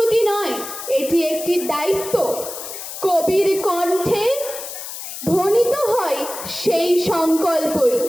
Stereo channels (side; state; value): left; noise; hiss, 9 dB below the sound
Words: নয়, এটি একটি দায়িত্ব। কবির কণ্ঠে ধ্বনিত হয় সেই সংকল্পই।